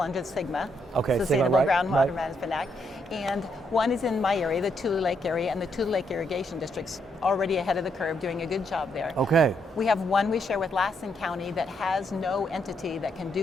under SGMA, Sustainable Groundwater Management Act. And one is in my area, the Tule Lake area, and the Tule Lake Irrigation District's already ahead of the curve, doing a good job there. Okay. We have one we share with Lassen County that has no entity that can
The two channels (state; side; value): normal; both; correlation 0.76